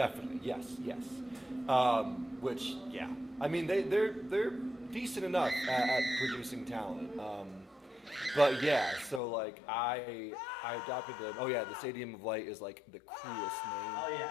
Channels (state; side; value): drops out; right; at 9.2 s